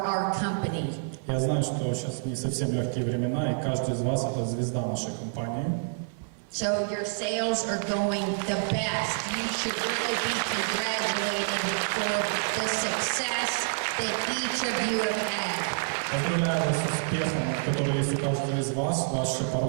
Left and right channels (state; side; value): silent; left; 56 dB below the other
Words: our company. Я знаю, что сейчас не совсем легкие времена, и каждый из вас – это звезда нашей компании. So your sales are going the best. You should really be congratulated for the success that each of you have had. Поздравляю вас с успехом, который есть у каждого из вас. Ваши